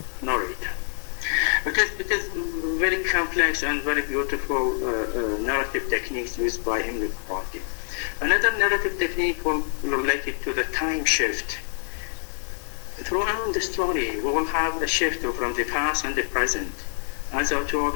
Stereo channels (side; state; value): right; silent; 61 dB below the other